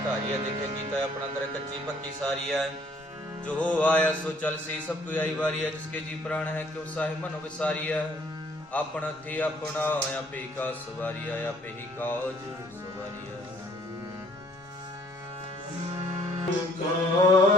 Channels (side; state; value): both; normal; correlation 0.61